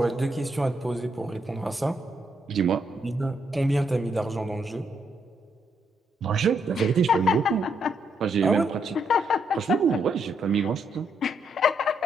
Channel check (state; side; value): normal; both; correlation 0.76